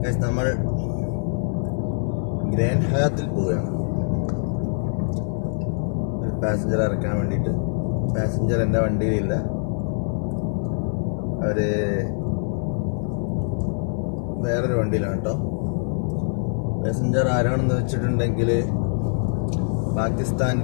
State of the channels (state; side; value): silent; right; digital silence